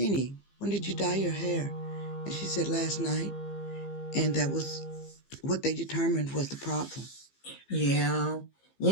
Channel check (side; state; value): right; late; 15 ms